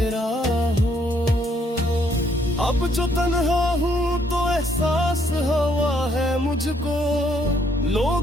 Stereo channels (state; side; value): normal; both; correlation 0.69